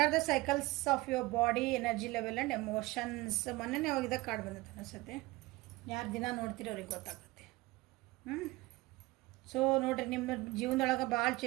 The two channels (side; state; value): left; quieter; 20.8 dB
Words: the cycles of your body, energy level and emotions. ಮೊನ್ನೆ ಅವಾಗ ಕಾರ್ಡ್ ಬಂದೈತೆ ಅನಿಸುತ್ತೆ. ಯಾರು ದಿನ ನೋಡ್ತೀರಿ ಅವ್ರಿಗೆ ಗೊತ್ತಾಗುತ್ತೆ. ಸೊ ನೋಡಿರಿ, ನಿಮ್ಮ ಜೀವನದೊಳಗೆ ಭಾಳ